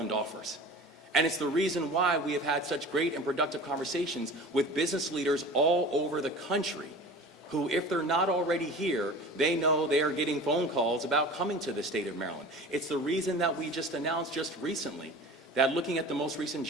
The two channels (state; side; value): normal; both; correlation 0.38